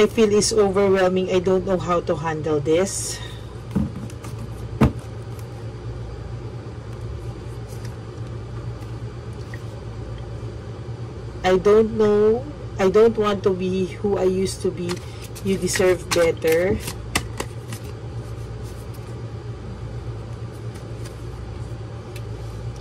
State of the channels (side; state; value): both; identical; correlation 1.00